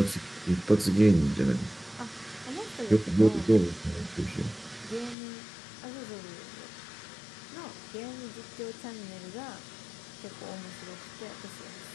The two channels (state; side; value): drops out; right; at 5.2 s